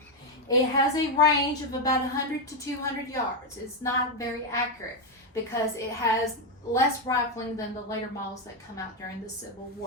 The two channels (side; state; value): both; normal; correlation 0.04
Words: It has a range of about 100 to 200 yards. It's not very accurate because it has less rifling than the later models that come out during the Civil